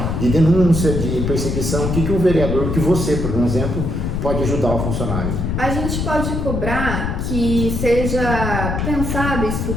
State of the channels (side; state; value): left; noise; rumble, 1 dB below the sound